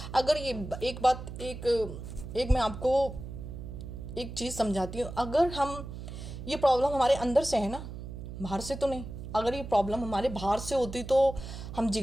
अगर ये एक मैं आपको एक चीज़ समझाती हूँ। अगर ये प्रॉब्लम हमारे अंदर से है ना, बाहर से तो नहीं। अगर ये प्रॉब्लम हमारे बाहर से होती तो हम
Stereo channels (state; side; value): noise; right; hum, 10 dB below the sound